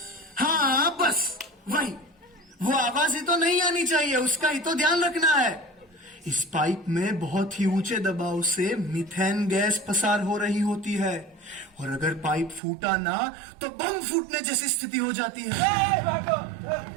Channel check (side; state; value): left; drops out; at 12.6 s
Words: हाँ बस वही, वो आवाज ही तो नहीं आनी चाहिए, उसका ही तो ध्यान रखना है। इस पाइप में बहुत ही ऊंचे दबाव से मीथेन गैस पसार हो रही होती है और अगर पाइप फूटा ना तो बम फूटने जैसी स्थिति हो जाती है।